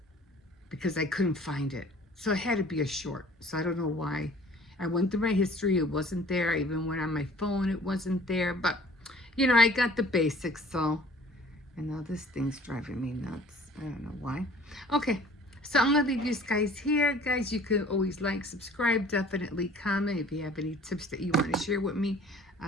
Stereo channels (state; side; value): normal; both; correlation 0.51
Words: because I couldn't find it. So it had to be a short. So I don't know why. I went through my history, it wasn't there. I even went on my phone, it wasn't there. But you know, I got the basics. So, and now this thing's driving me nuts. I don't know why. Okay, so I'm gonna leave you guys here. Guys, you can always like, subscribe, definitely comment if you have any tips that you want to share with me.